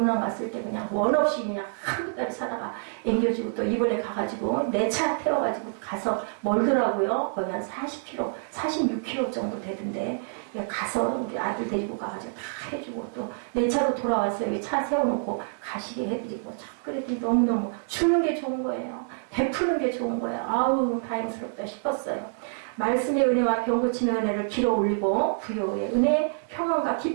갔을 때 그냥 원 없이 그냥 한 달 사다가 앵겨주고 또 이번에 가가지고 내 차 태워가지고 가서 멀더라고요. 거의 한 40km, 46km 정도 되던데 가서 우리 아들 데리고 가가지고 다 해주고 또 내 차로 돌아와서 여기 차 세워놓고 가시게 해드리고 참 그랬더니 너무너무 주는 게 좋은 거예요. 베푸는 게 좋은 거예요. 아우 다행스럽다 싶었어요. 말씀의 은혜와 병 고치는 은혜를 길어 올리고 부요의 은혜, 평안과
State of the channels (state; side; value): silent; left; digital silence